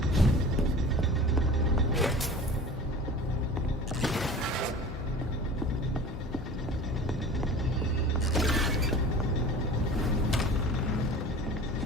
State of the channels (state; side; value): normal; both; correlation 0.38